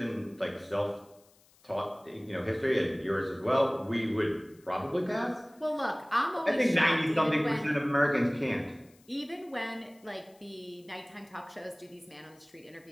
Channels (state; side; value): noise; left; hiss, 30 dB below the sound